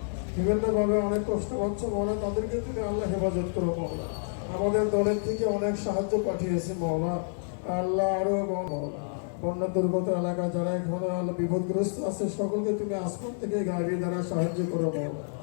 বিভিন্নভাবে অনেক কষ্ট পাচ্ছে মাওলা, তাদেরকে তুমি আল্লাহ হেফাজত করো মাওলা। আমাদের দলের থেকে অনেক সাহায্য পাঠিয়েছে মাওলা, আল্লাহ আরো মাওলা। বন্যা দুর্গত এলাকা যারা এখন বিপদগ্রস্ত আছে সকলকে তুমি আসমান থেকে গাড়ি দ্বারা সাহায্য করো মাওলা।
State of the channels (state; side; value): silent; right; 59 dB below the other